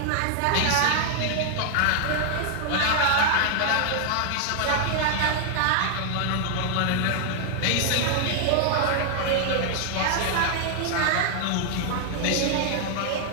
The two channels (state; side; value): different; both; correlation 0.00